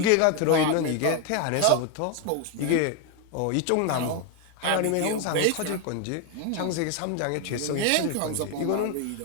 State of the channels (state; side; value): different; both; correlation 0.01